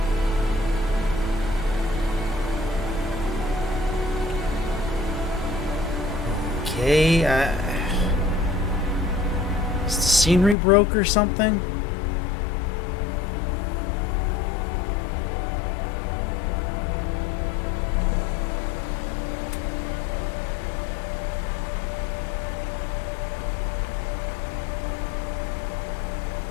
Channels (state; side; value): drops out; right; at 10.6 s